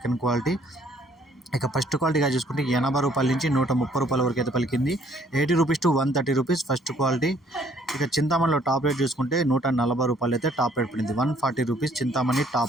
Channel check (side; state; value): both; normal; correlation 0.62